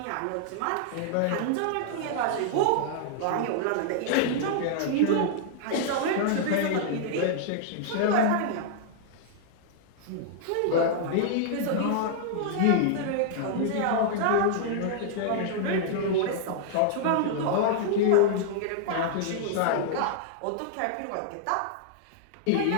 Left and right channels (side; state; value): both; different; correlation -0.01